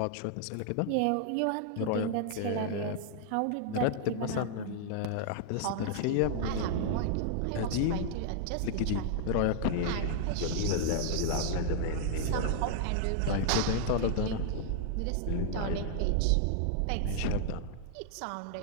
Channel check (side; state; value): both; different; correlation -0.01